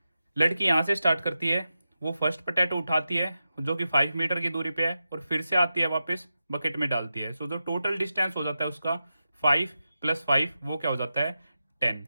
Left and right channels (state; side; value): inverted; both; correlation -0.90